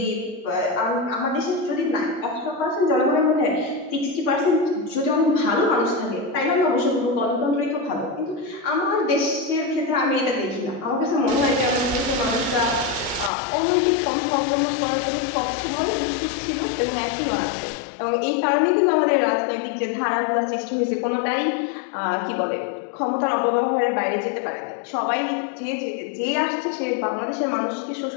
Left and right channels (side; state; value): right; drops out; at 13.3 s